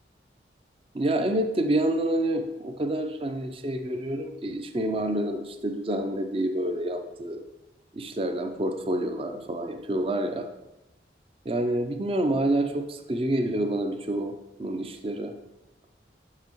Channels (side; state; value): both; normal; correlation 0.62